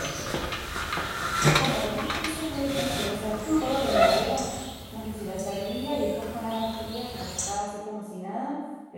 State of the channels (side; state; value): both; identical; correlation 1.00